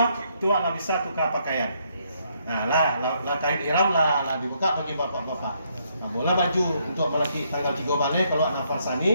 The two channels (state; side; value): inverted; both; correlation -0.72